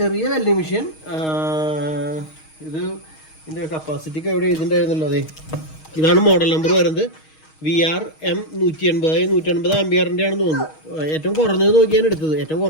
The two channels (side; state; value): right; late; 6.4 ms